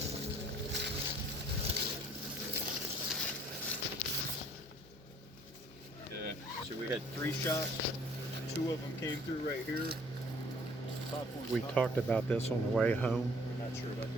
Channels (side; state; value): both; normal; correlation 0.57